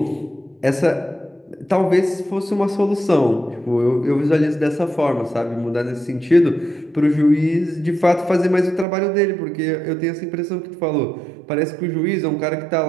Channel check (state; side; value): drops out; left; at 8.8 s